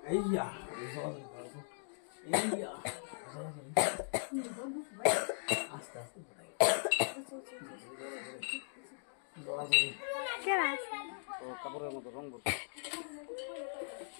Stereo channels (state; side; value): silent; right; digital silence